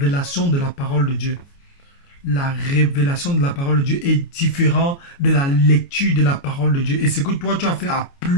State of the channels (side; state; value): right; late; 29 ms